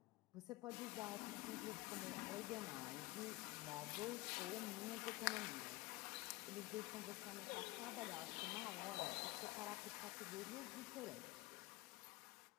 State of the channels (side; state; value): right; quieter; 21.1 dB